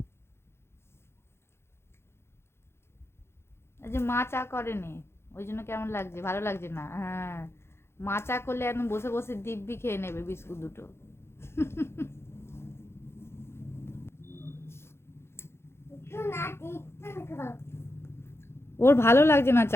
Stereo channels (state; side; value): late; right; 0.12 ms